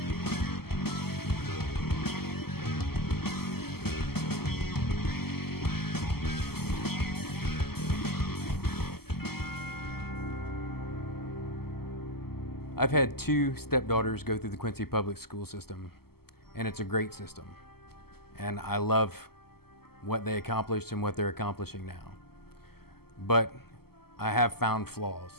I've had two stepdaughters go through the Quincy public school system, and it's a great system. And I love what they accomplished and what they're accomplishing now. But I have found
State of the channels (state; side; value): late; right; 0.95 ms